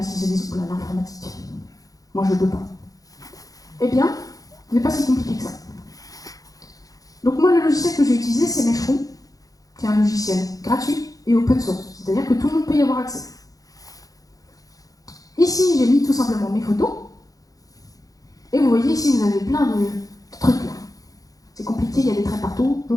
qu'ils se disent, oula, l'informatique, moi je ne peux pas. Eh bien, ce n'est pas si compliqué que ça. Donc moi, le logiciel que j'ai utilisé, c'est Meshroom, qui est un logiciel gratuit et open source, c'est-à-dire que tout le monde peut y avoir accès. Ici, j'ai mis tout simplement mes photos, et vous voyez ici, vous avez plein de trucs là. C'est compliqué, il y a des traits partout, je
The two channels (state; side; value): late; right; 0.17 ms